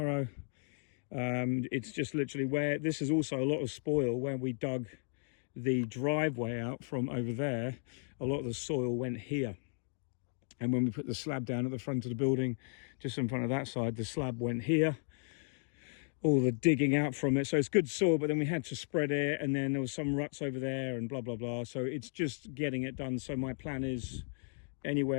It's just literally where, this is also a lot of spoil where we dug the driveway out from over there. A lot of the soil went here, and when we put the slab down at the front of the building, just in front of that side, the slab went here, all the digging out from it. So it's good soil, but then we had to spread it, and then there was some ruts over there and blah blah blah. So it's just getting it done. So my plan is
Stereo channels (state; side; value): silent; right; 55 dB below the other